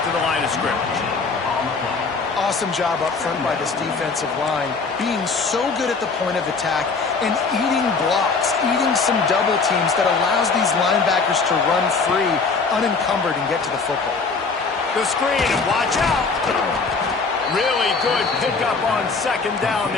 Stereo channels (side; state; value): right; quieter; 4.5 dB